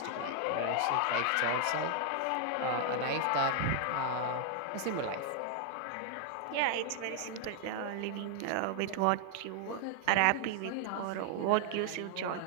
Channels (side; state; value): both; different; correlation 0.00